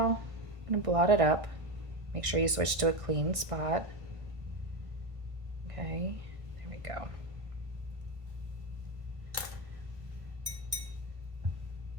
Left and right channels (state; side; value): late; left; 1.5 ms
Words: I'm gonna blot it up. Make sure you switch to a clean spot. Okay, there we go.